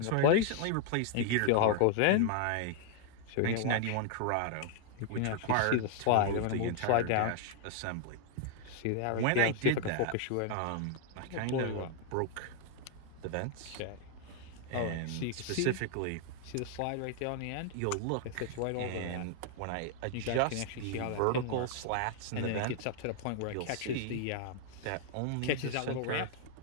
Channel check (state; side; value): different; both; correlation 0.00